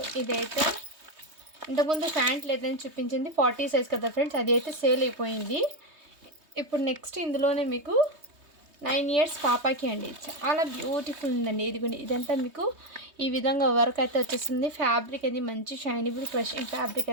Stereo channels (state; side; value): late; left; 3.2 ms